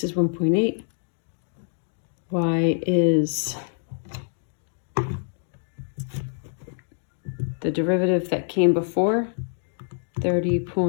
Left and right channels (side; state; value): right; silent; digital silence